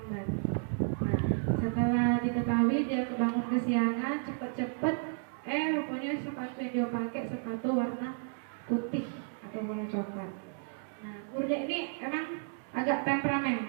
Nah, setelah diketahui dia kebangun kesiangan, cepet-cepet, rupanya sepatu yang dia pakai sepatu warna putih atau warna coklat. Nah, gurunya ini emang agak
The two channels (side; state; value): left; silent; digital silence